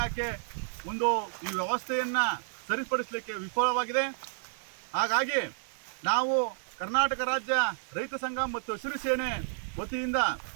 ಒಂದು ಈ ವ್ಯವಸ್ಥೆಯನ್ನ ಸರಿಪಡಿಸಲಿಕ್ಕೆ ವಿಫಲವಾಗಿದೆ. ಹಾಗಾಗಿ ನಾವು ಕರ್ನಾಟಕ ರಾಜ್ಯ ರೈತ ಸಂಘ ಮತ್ತು ಹಸಿರು ಸೇನೆ ವತಿಯಿಂದ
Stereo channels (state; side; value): silent; left; 57 dB below the other